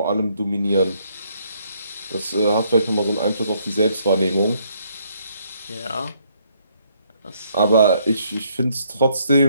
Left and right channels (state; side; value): inverted; both; correlation -0.69